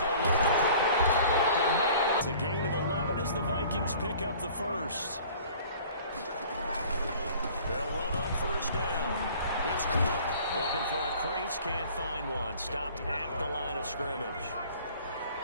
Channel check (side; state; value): both; inverted; correlation -0.49